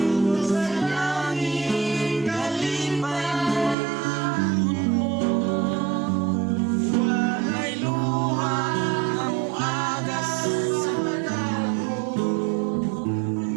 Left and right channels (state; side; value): drops out; left; at 3.8 s